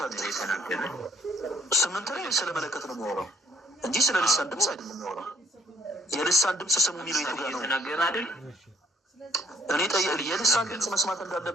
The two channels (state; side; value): normal; both; correlation 0.63